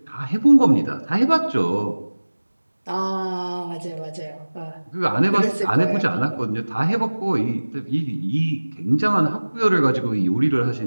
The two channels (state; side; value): inverted; both; correlation -1.00